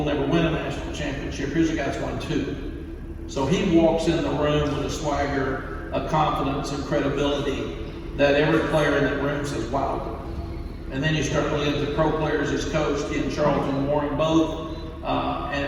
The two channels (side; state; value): both; identical; correlation 1.00